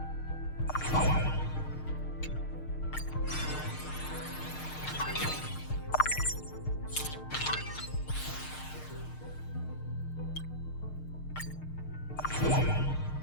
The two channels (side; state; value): right; late; 6.6 ms